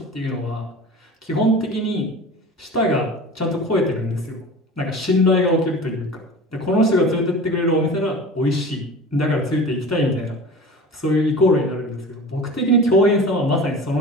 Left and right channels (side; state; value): both; normal; correlation 0.36